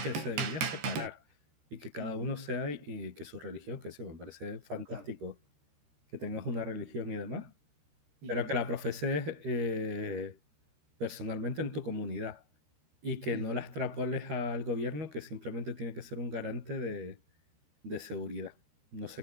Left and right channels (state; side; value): late; left; 13 ms